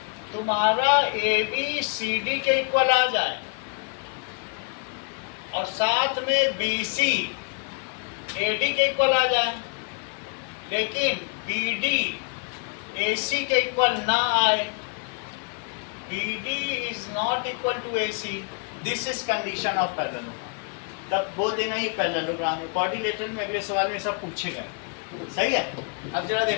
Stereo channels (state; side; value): quieter; right; 38.0 dB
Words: तुम्हारा ABCD के इक्वल आ जाए और साथ में BC AD के इक्वल आ जाए, लेकिन BD AC के इक्वल ना आए, BD is not equal to AC, this is condition of parallelogram। तब बोल देना ही पैरेललोग्राम है। कोऑर्डिनेटर में अगले सवाल में सब पूछेगा, सही है। अब जरा